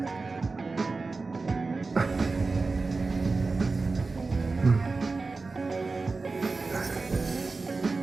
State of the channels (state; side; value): quieter; left; 3.9 dB